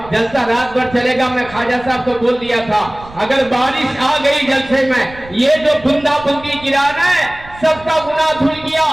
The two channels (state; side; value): noise; right; rumble, 20 dB below the sound